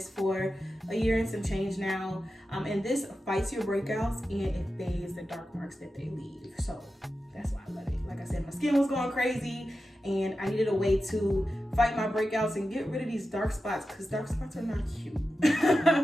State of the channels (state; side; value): normal; both; correlation 0.92